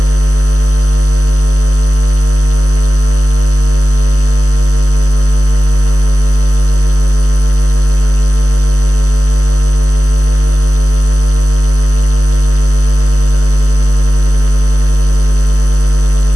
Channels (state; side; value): late; left; 0.66 ms